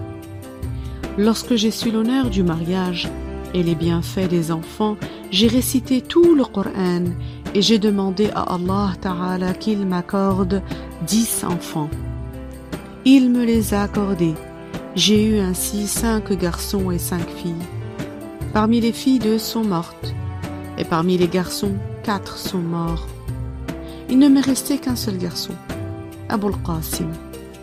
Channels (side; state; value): both; identical; correlation 1.00